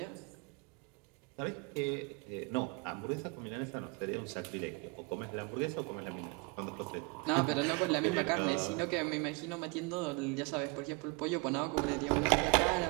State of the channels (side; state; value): left; quieter; 29.0 dB